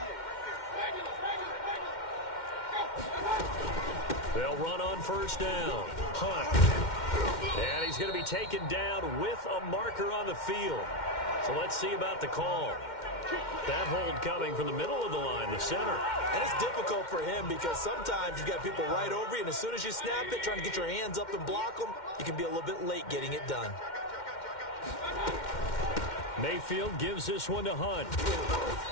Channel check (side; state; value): right; late; 2.1 ms